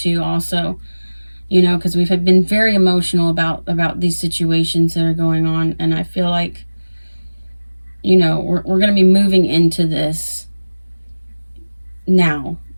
also. You know, because we've been very emotional about these situations that are going on. And I feel like, you know, we're going to be moving into this. now.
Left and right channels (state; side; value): inverted; both; correlation -1.00